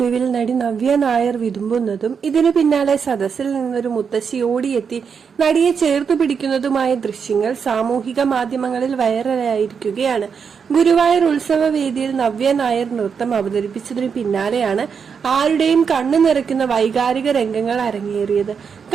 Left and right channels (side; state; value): left; quieter; 6.4 dB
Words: നടി നവ്യ നായർ വിതുമ്പുന്നതും ഇതിനു പിന്നാലെ സദസ്സിൽ നിന്നൊരു മുത്തശ്ശി ഓടിയെത്തി നടിയെ ചേർത്തു പിടിക്കുന്നതുമായ ദൃശ്യങ്ങൾ സാമൂഹിക മാധ്യമങ്ങളിൽ വൈറലായിരിക്കുകയാണ്. ഗുരുവായൂർ ഉത്സവ വേദിയിൽ നവ്യ നായർ നൃത്തം അവതരിപ്പിച്ചതിനു പിന്നാലെയാണ് ആരുടെയും കണ്ണു നിറയ്ക്കുന്ന വൈകാരിക രംഗങ്ങൾ അരങ്ങേറിയത്.